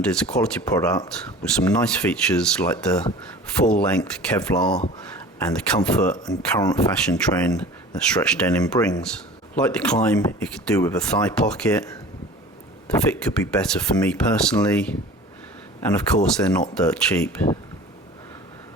is a quality product with some nice features like the full-length Kevlar and the comfort and current fashion trend that stretch denim brings. Like the Klein, it could do with a thigh pocket. The fit could be better for me personally, and of course they're not dirt cheap.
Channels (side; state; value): both; normal; correlation 0.41